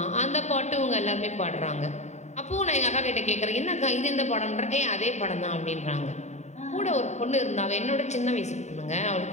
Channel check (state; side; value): late; right; 0.33 ms